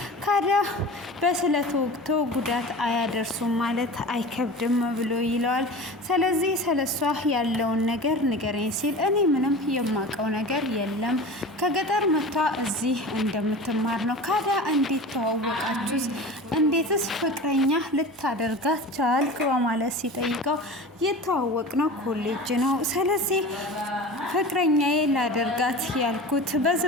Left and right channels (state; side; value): normal; both; correlation 0.34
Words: ካዳ በስለት ወቅቶ ጉዳት አያደርሱም ማለት አይከብድም ብሎ ይለዋል። ስለዚህ ስለሷ ያለውን ነገር ንገረኝ ሲል እኔ ምንም የማውቀው ነገር የለም፣ ከገጠር መጥታ እዚህ እንደምትማር ነው። ካዳ እንዴት ተዋወቃችሁስ? እንዴትስ ፍቅረኛ ልታደርጋት ቻልክ? በማለት ሲጠይቀው የተዋወቅነው ኮሌጅ ነው። ስለዚህ ፍቅረኛዬ ላደርጋት ያልኩት